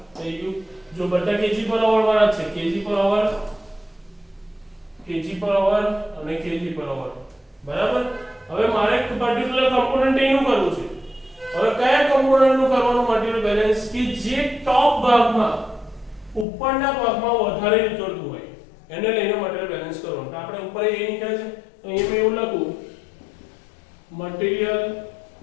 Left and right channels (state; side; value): drops out; right; at 16.4 s